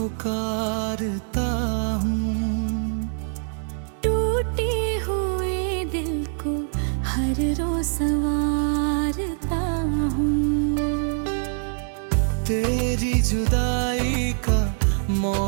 हूँ। टूटे हुए दिल को हर रोज संवारता हूँ। तेरी जुदाई का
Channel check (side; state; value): left; silent; digital silence